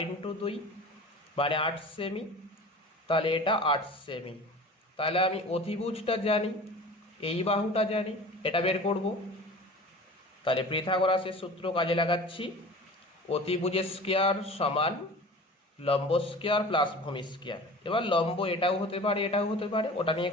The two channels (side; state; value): both; normal; correlation 0.39